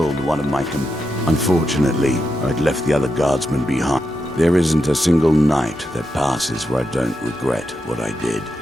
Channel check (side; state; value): both; normal; correlation 0.86